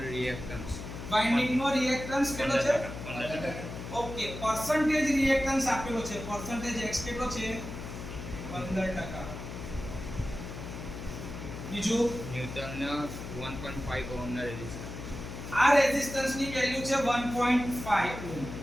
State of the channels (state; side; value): noise; left; hum, 9 dB below the sound